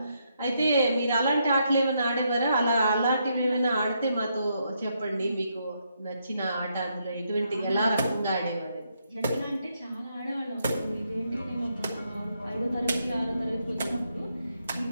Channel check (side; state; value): both; inverted; correlation -0.78